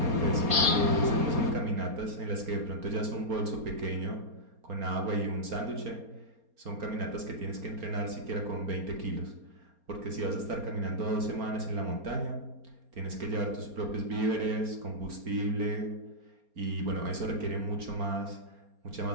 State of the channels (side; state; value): left; late; 4.2 ms